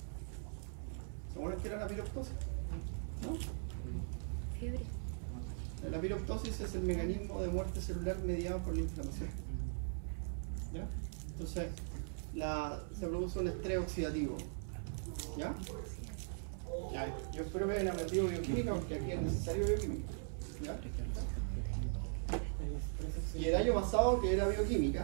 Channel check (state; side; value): silent; left; 51 dB below the other